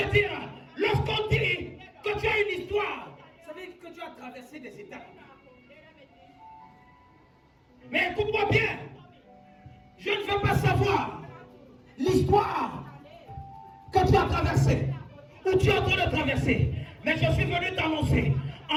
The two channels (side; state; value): both; identical; correlation 1.00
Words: dire, lorsqu'on dit que tu as une histoire, ça veut dire que tu as traversé des étapes. Mais écoute-moi bien, je ne veux pas savoir l'histoire que tu as traversée. où tu es en train de traverser. Mais je suis venu t'annoncer,